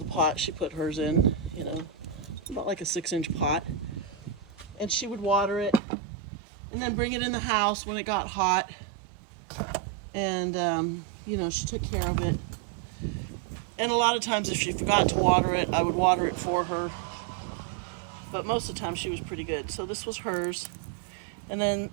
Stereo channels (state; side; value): drops out; left; at 5.8 s